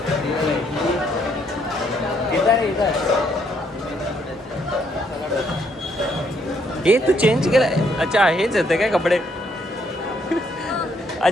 हे तू चेंज केलं. अच्छा हेच येते काय कपडे?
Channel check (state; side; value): normal; both; correlation 0.71